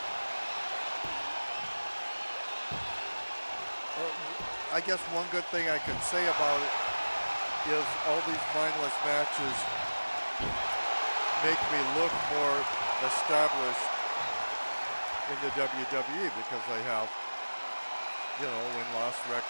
I guess one good thing I can say about it is all these mindless matches make me look more established in the WWE because I have, win-loss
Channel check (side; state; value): both; inverted; correlation -1.00